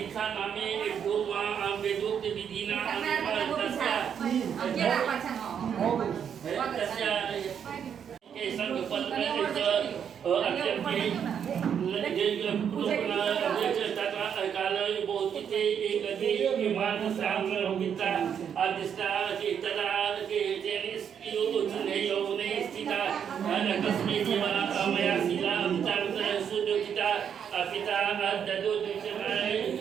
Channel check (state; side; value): quieter; left; 8.1 dB